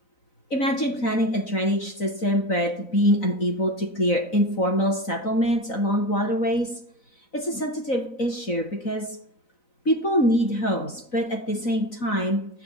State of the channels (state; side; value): late; right; 3.9 ms